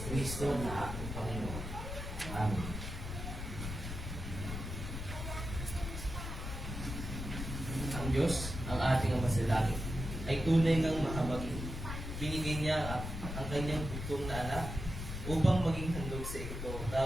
na aking Panginoon. Amen. ang Diyos, ang ating Ama sa langit, ay tunay ng mahabagin. Binigay niya ang kanyang bugtong na anak upang maging handog sa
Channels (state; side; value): noise; left; rumble, 6 dB below the sound